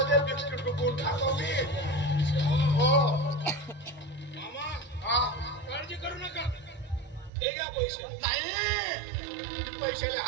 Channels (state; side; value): drops out; left; at 7.3 s